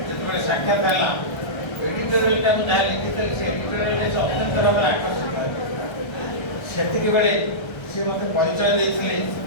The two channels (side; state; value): right; late; 1.3 ms